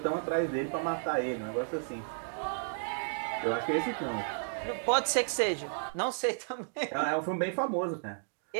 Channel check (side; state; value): left; silent; digital silence